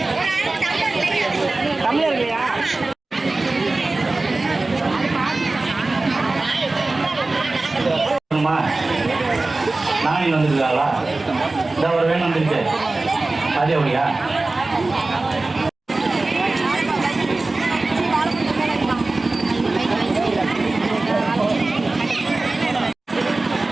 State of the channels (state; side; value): quieter; left; 3.2 dB